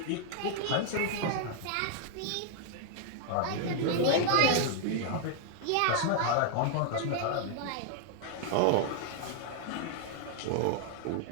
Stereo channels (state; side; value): different; both; correlation 0.00